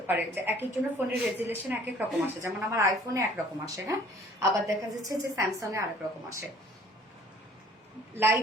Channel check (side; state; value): both; normal; correlation 0.54